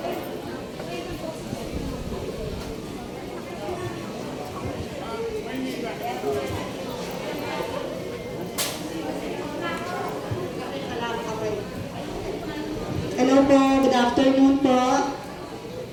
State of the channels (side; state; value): both; identical; correlation 1.00